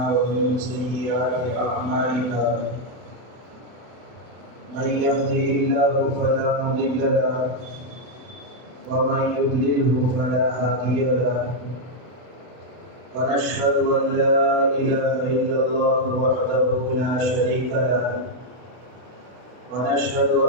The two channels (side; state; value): left; late; 32 ms